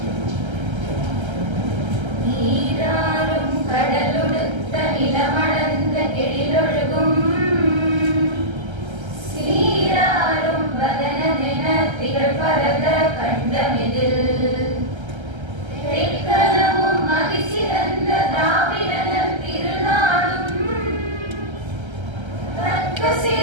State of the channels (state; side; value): late; left; 1.3 ms